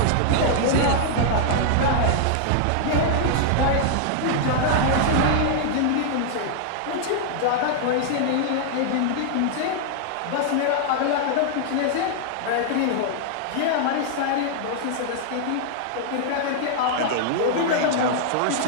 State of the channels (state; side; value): different; both; correlation -0.01